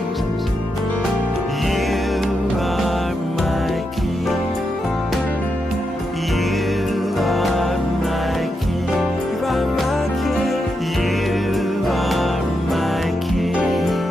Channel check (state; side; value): normal; both; correlation 0.84